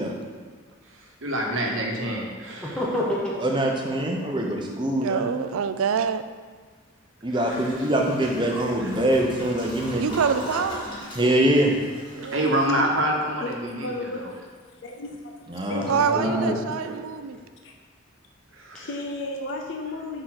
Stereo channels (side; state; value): both; normal; correlation 0.30